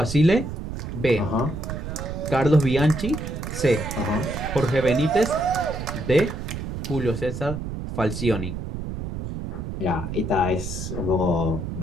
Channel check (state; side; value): noise; right; rumble, 6 dB below the sound